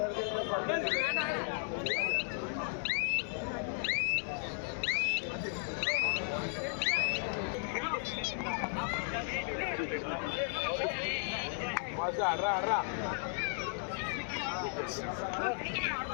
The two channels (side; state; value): right; silent; 54 dB below the other